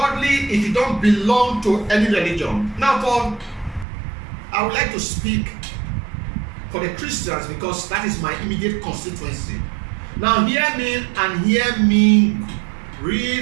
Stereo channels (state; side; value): drops out; left; at 3.9 s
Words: if you don't belong to any religion. Now, I would like to speak for the Christians, because that is my immediate constituency. Now hear me, and hear me